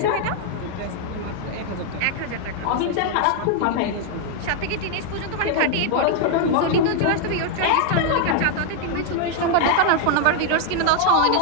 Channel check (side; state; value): both; different; correlation 0.00